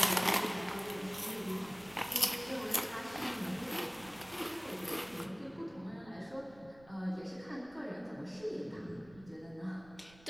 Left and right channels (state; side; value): noise; right; rumble, 23 dB below the sound